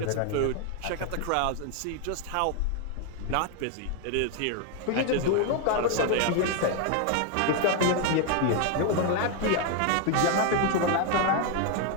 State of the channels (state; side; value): different; both; correlation 0.00